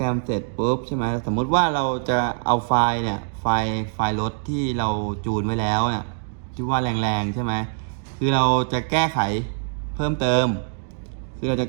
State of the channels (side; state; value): left; silent; 63 dB below the other